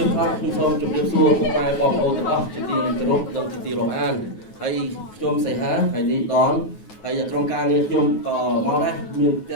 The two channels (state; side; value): late; right; 9.3 ms